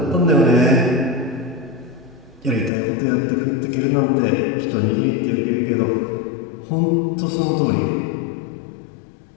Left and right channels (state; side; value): drops out; right; at 2.7 s